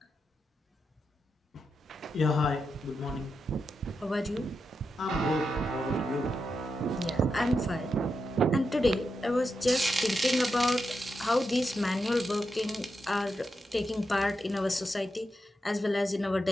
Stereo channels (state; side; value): normal; both; correlation 0.86